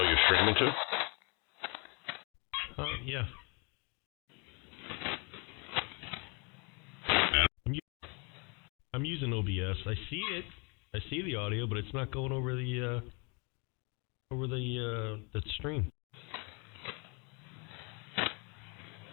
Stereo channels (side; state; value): right; quieter; 32.7 dB